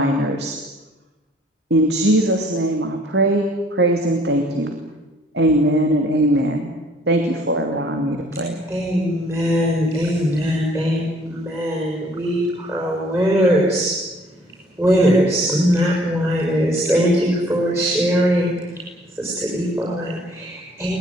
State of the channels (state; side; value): normal; both; correlation 0.58